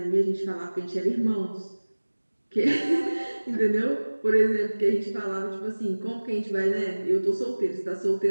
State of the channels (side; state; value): both; inverted; correlation -1.00